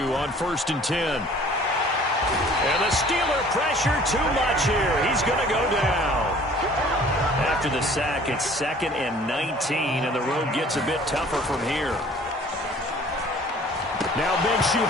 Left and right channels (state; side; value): normal; both; correlation 0.52